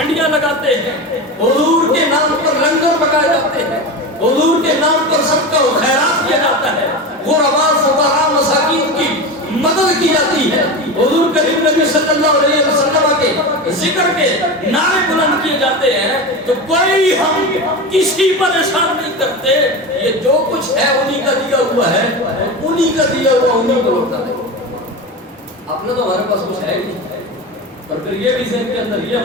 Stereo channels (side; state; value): both; normal; correlation 0.24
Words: لگاتے ہیں، حضور کے نام پر لنگر پکائے جاتے ہیں، حضور کے نام پر صدقہ و خیرات کیا جاتا ہے، غرباء فقراء مساکین کی مدد کی جاتی ہے، حضور کریم نبی صلی اللہ علیہ وسلم کے ذکر کے نعرے بلند کیے جاتے ہیں، تو کوئی ہم کسی پر احسان نہیں کرتے، یہ جو کچھ ہے انہی کا دیا ہوا ہے، انہی کا دیا ہوا انہی کو لوٹا ہے۔ اپنا تو ہمارے پاس کچھ ہے ہی نہیں، اور پھر یہ بھی ذہن کے اندر یہ